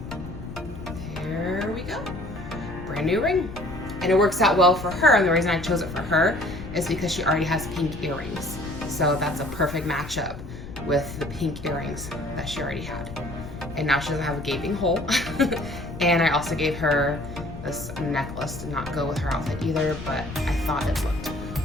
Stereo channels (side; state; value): left; noise; rumble, 12 dB below the sound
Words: There we go. Brand new ring. And it works out well for her, and the reason I chose it for her is because she already has pink earrings. So that's a perfect matchup with the pink earrings that she already had. And now she doesn't have a gaping hole. And I also gave her this necklace to not go with her outfit either, but I thought it looked